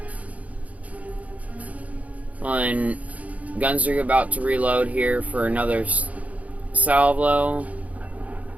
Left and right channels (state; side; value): late; left; 0.069 ms